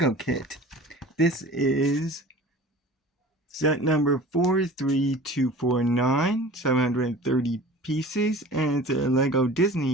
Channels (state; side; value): normal; both; correlation 0.42